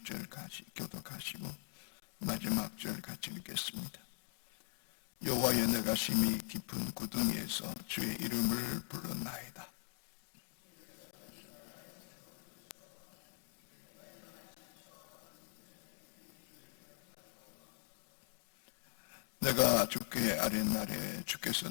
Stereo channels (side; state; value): right; silent; 50 dB below the other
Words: 교독하시고 마지막 절 같이 읽겠습니다. 여호와여 내가 심히 깊은 구덩이에서 주의 이름을 불렀나이다. 내가 주께 아랫날에 주께서